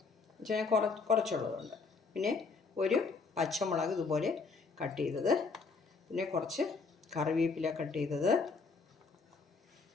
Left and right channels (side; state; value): right; quieter; 4.5 dB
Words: പക്ഷേ ഞാൻ കുറച്ചുള്ളതുകൊണ്ട്. പിന്നെ ഒരു പച്ചമുളക് ഇതുപോലെ കട്ട് ചെയ്തത്, പിന്നെ കുറച്ച് കറിവേപ്പില കട്ട് ചെയ്തത്,